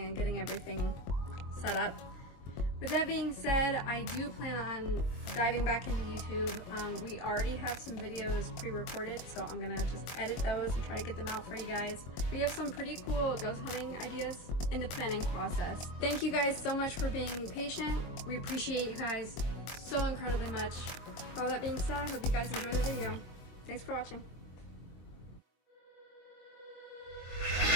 getting everything set up. With that being said, I do plan on diving back into YouTube. We already have some videos pre-recorded, so I'm gonna just edit those and try to get them out for you guys. We have some pretty cool ghost hunting ideas in the planning process. Thank you guys so much for being patient. We appreciate you guys so incredibly much. All that being said, I hope you guys enjoy the video. Thanks for watching.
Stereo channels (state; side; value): late; right; 23 ms